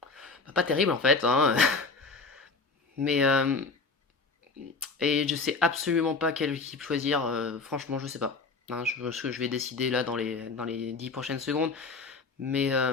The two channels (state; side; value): quieter; right; 4.2 dB